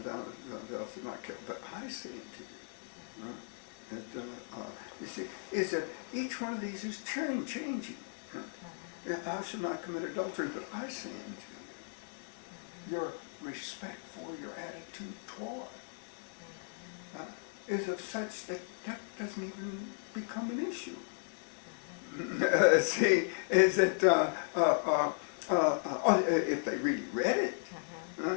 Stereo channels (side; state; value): right; silent; 54 dB below the other